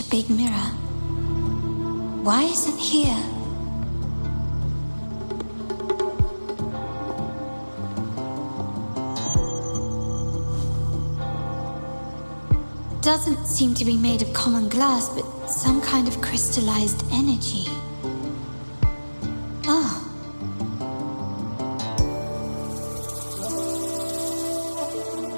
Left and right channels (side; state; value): both; inverted; correlation -1.00